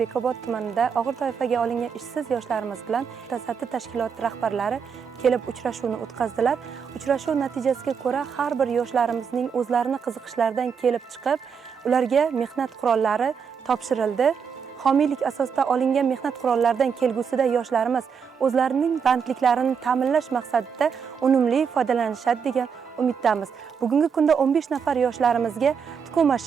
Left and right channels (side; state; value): left; quieter; 6.6 dB